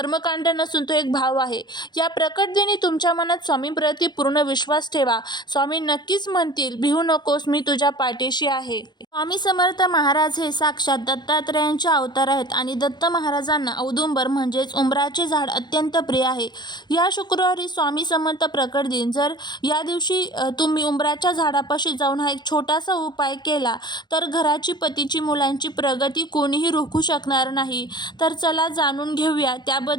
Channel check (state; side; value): late; right; 0.21 ms